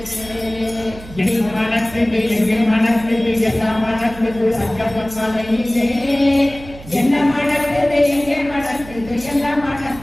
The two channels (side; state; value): right; noise; hum, 17 dB below the sound